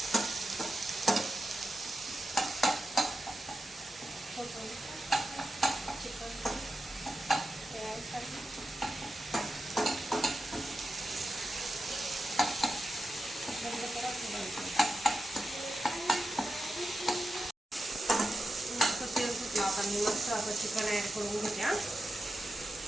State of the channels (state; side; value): normal; both; correlation 0.90